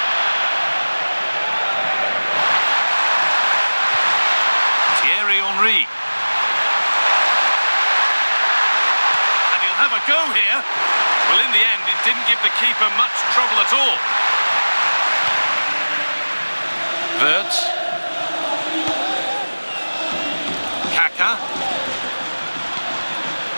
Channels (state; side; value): inverted; both; correlation -1.00